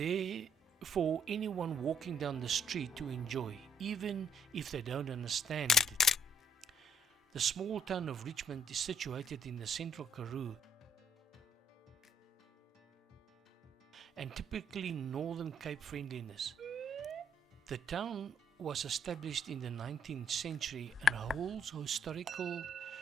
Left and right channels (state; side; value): normal; both; correlation 0.67